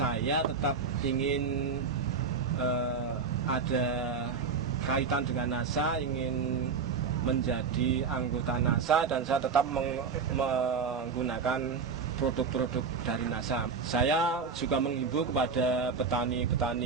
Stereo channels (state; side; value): quieter; left; 5.3 dB